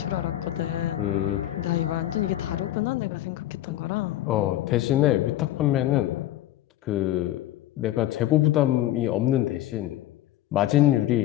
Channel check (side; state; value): right; quieter; 13.9 dB